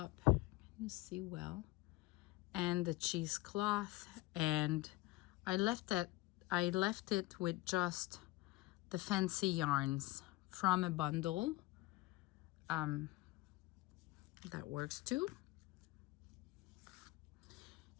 Can you see well? And the cheesecloth, and I left it with just the fancy yarns from a bundle. That works too.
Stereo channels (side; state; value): right; quieter; 19.4 dB